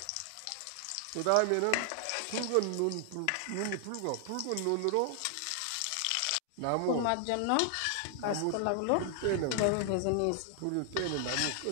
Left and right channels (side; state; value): both; different; correlation 0.00